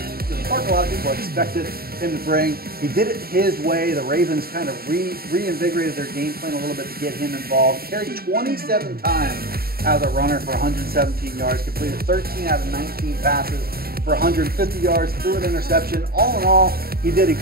people expected him to bring. He did it his way. The Ravens kind of reinvigorated their game plan a little bit to get him involved. Carried 27 times as a runner for 117 yards, completed 13 out of 19 passes for 150 yards, threw an interception. All in all, he did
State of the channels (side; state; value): left; late; 0.44 ms